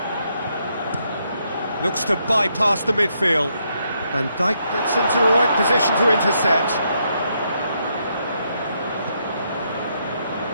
looks to bypass the midfield, and Dijk gets into the right position to intercept.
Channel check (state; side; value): inverted; both; correlation -0.77